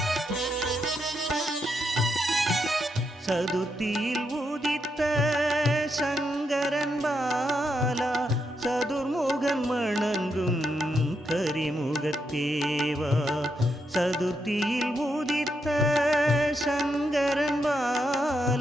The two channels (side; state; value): both; normal; correlation 0.81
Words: சதுர்த்தியில் உதித்த சங்கரன் பாலா சதுர்முகன் வணங்கும் கரிமுகத்தேவா. சதுர்த்தியில் உதித்த சங்கரன்